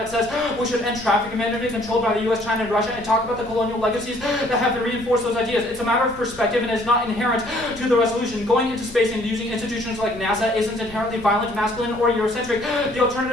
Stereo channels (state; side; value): noise; left; rumble, 19 dB below the sound